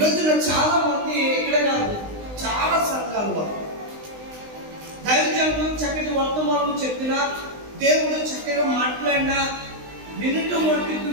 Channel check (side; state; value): left; late; 19 ms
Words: చాలా మంది, ఇక్కడ కాదు చాలా సంఘాల్లో దైవజనులు చక్కటి వర్తమానం చెప్పినా, దేవుడు చక్కగా మాట్లాడినా వినుట మట్టుకు